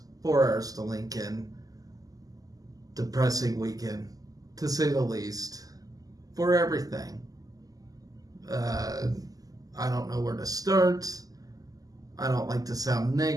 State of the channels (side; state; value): left; late; 0.17 ms